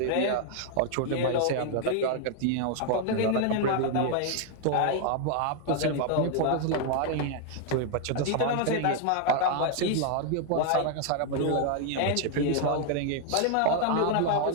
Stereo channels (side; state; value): both; different; correlation 0.00